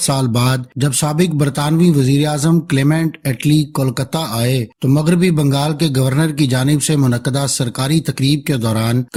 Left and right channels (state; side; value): identical; both; correlation 1.00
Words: بعد جب سابق برطانوی وزیر اعظم کلیمنٹ ایٹلی کولکتہ آئے تو مغربی بنگال کے گورنر کی جانب سے منعقدہ سرکاری تقریب کے دوران